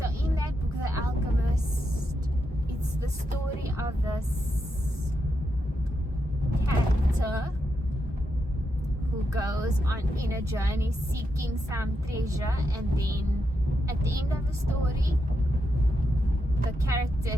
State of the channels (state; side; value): normal; both; correlation 0.84